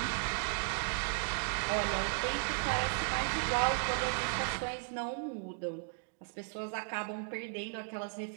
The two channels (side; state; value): left; silent; 54 dB below the other